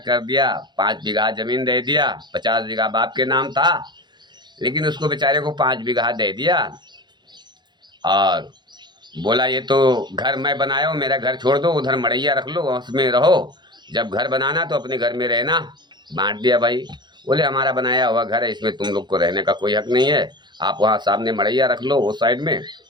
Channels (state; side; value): late; left; 0.21 ms